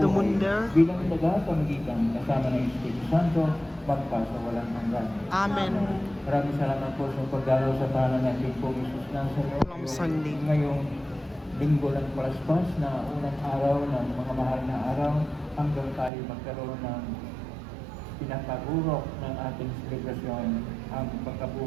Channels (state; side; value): drops out; left; at 16.1 s